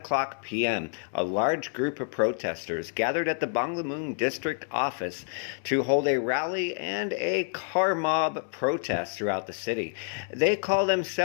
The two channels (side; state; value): right; silent; 59 dB below the other